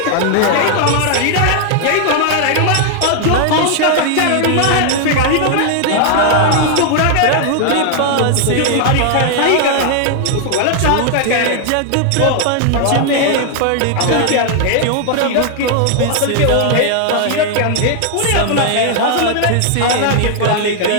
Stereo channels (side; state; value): both; different; correlation 0.00